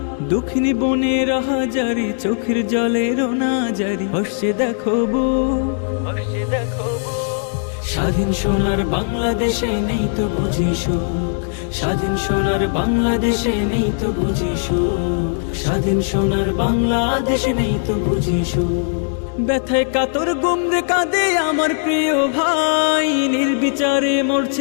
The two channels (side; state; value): right; silent; digital silence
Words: দক্ষিণী বনের হাজারি চোখের জলে রোনা জারি, হসছে দেখো বুক, হসছে দেখো বুক। স্বাধীন সোনার বাংলাদেশে নেই তো বুঝি সুখ, স্বাধীন সোনার বাংলাদেশে নেই তো বুঝি সুখ, স্বাধীন সোনার বাংলাদেশে নেই তো বুঝি সুখ। ব্যথায় কাতর গুমরে কাঁদে আমার প্রিয় ভাই, নির্বিচারে